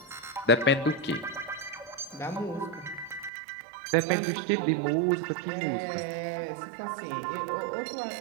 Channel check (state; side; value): drops out; left; at 3.3 s